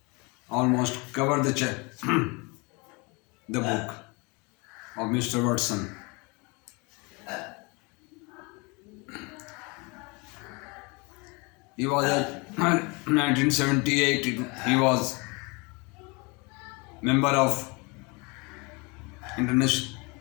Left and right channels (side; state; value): right; quieter; 28.5 dB